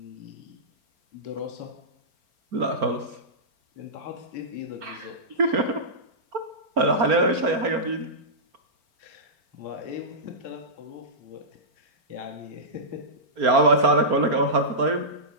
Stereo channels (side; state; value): left; late; 4.4 ms